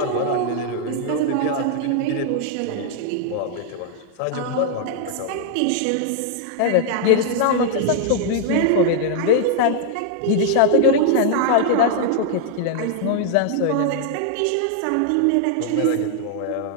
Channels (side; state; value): both; different; correlation 0.00